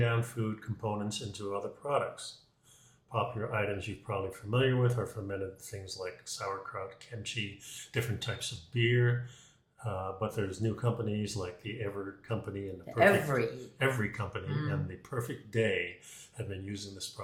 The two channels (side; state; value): both; identical; correlation 1.00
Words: food components into other products. Popular items you're probably familiar with are fermented things like sauerkraut, kimchi, different types of beer. But there's new companies like the Every Company and Every Company and the Perfect Day have been using this